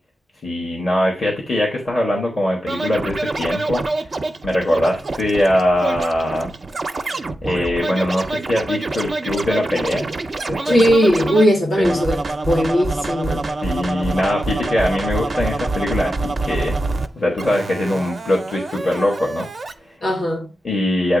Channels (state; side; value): normal; both; correlation 0.90